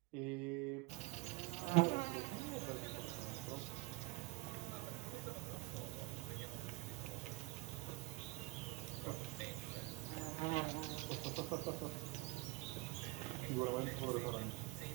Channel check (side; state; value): left; quieter; 23.7 dB